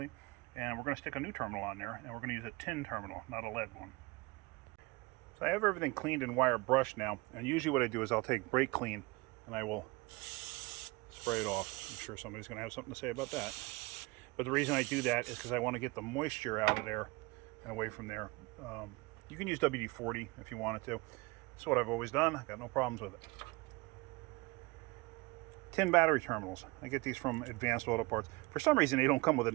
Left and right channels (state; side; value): quieter; left; 24.5 dB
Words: And we're going to stick a new terminal on there. And we're going to use a tin terminal, not a lead one. So I have everything cleaned and wire brushed now. And usually what I do is I'll take brake clean and I will spray it off. I'm sure somebody's going to have something to say about that. But the reason I do that is because I want to get the moisture out of there and away from there. You can use WD-40 if you wanted to. That's what I've always done. I've got no problems with it. Tin battery terminals. I get these from Advanced Auto Parts. For some reason, they don't come with a